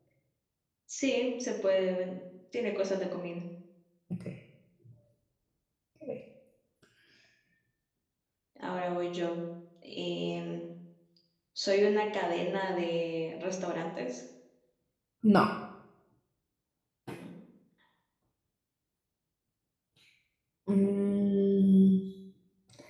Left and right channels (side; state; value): both; identical; correlation 1.00